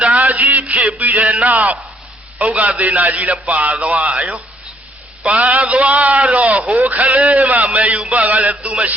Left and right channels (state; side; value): normal; both; correlation 0.68